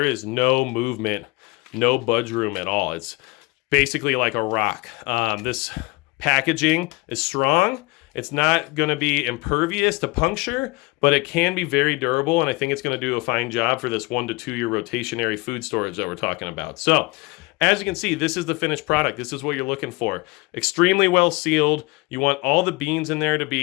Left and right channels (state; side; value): quieter; right; 24.5 dB